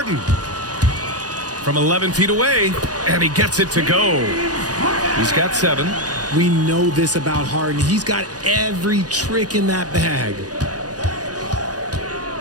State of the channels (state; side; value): late; left; 0.68 ms